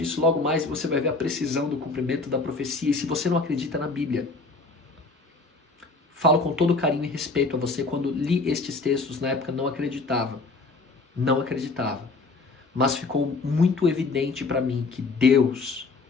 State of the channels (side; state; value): right; quieter; 3.7 dB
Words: logo mais e você vai ver a precisão do cumprimento da profecia. E se você não acredita na Bíblia, falo com todo carinho e respeito a você, quando li estes textos na época não acreditava. Não acreditava. Mas ficou muito evidente para mim que Deus